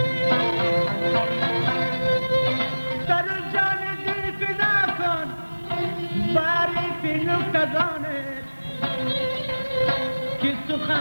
سر و جان دل فدا کن باری فی نکتدانت که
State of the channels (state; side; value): inverted; both; correlation -1.00